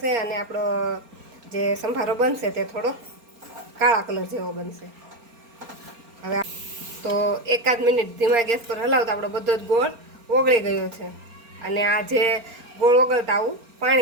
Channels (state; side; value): late; left; 4.3 ms